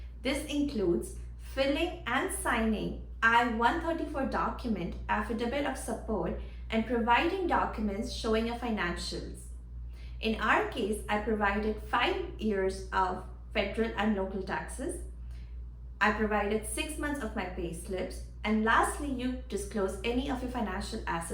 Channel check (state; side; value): identical; both; correlation 1.00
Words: This includes filling and signing I-134 document, affidavit of support, and providing documents showing your financials. In our case, I provided 5 years of federal and local taxes. I provided 6 months of my pay slips, and lastly, you disclose any of your financial